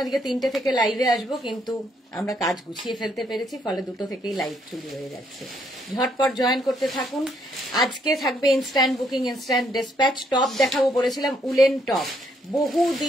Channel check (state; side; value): normal; both; correlation 0.71